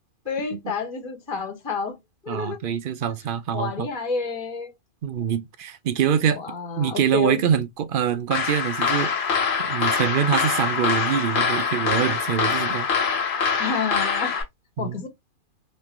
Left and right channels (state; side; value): late; left; 2.4 ms